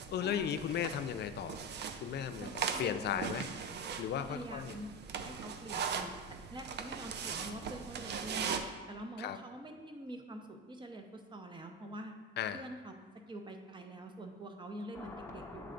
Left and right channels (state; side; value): normal; both; correlation 0.18